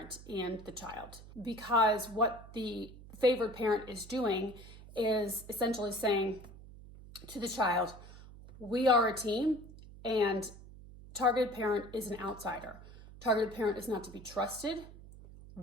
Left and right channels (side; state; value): right; noise; hum, 17 dB below the sound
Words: and the child, because what the favored parent is doing is essentially saying to the child, we are a team and targeted parent is an outsider. Targeted parent is not to be trusted.